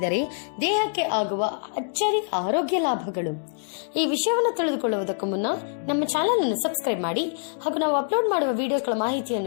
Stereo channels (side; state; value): right; silent; digital silence